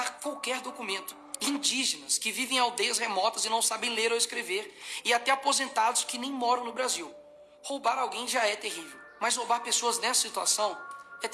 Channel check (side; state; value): both; identical; correlation 1.00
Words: qualquer documento. Indígenas que vivem em aldeias remotas e não sabem ler ou escrever. E até aposentados que nem moram no Brasil. Roubar alguém já é terrível. Mas roubar pessoas nessa situação é